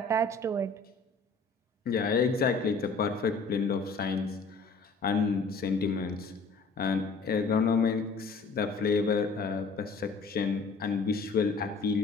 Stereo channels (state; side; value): quieter; right; 4.0 dB